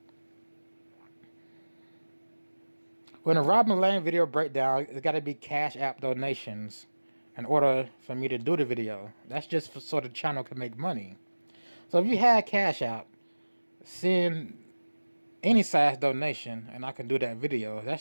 When a Robin Lane video breakdown, it's got to be Cashapp donations in order for me to do the video. That's just so the channel can make money. So if you had Cashapp, send any size donation and I can do that video.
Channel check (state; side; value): inverted; both; correlation -1.00